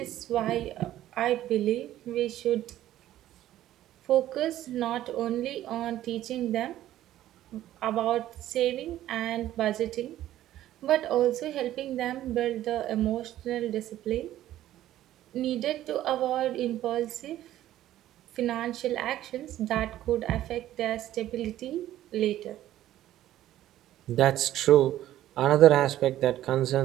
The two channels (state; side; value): quieter; left; 13.3 dB